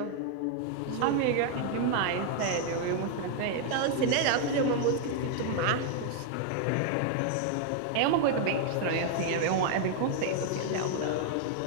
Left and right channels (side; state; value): both; different; correlation 0.00